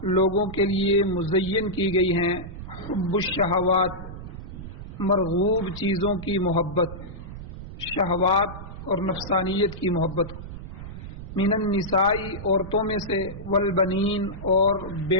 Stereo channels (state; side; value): noise; right; rumble, 11 dB below the sound